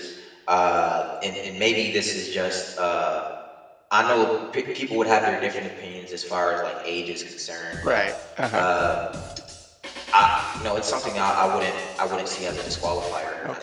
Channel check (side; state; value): both; identical; correlation 1.00